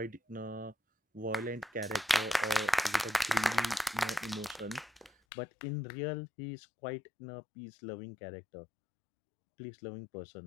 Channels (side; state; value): right; drops out; at 5.1 s